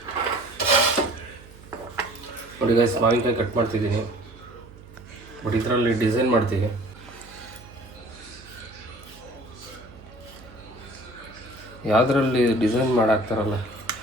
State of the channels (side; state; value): right; noise; hum, 21 dB below the sound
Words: ನೋಡಿ ಗೈಸ್, ಮಾವಿನಕಾಯಿ ಕಟ್ ಮಾಡ್ತಿದ್ದೀನಿ, ಬಟ್ ಇದರಲ್ಲಿ ಡಿಸೈನ್ ಮಾಡ್ತೀವಿ. ಯಾವುದರಲ್ಲಿ ಡಿಸೈನ್ ಮಾಡಾಕ್ತಾರಲ್ಲ,